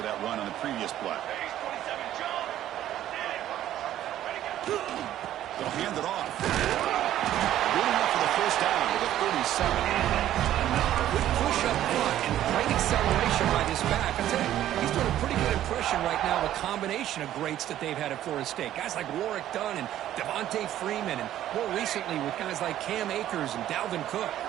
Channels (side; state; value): left; quieter; 12.4 dB